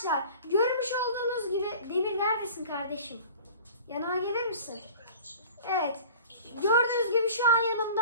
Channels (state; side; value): inverted; both; correlation -0.42